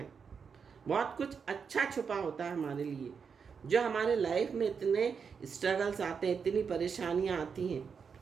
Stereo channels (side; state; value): left; quieter; 6.1 dB